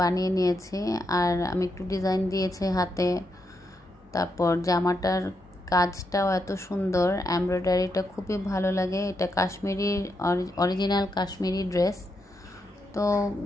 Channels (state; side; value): normal; both; correlation 0.82